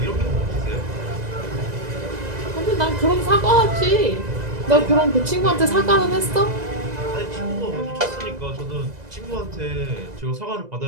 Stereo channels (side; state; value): left; late; 2.0 ms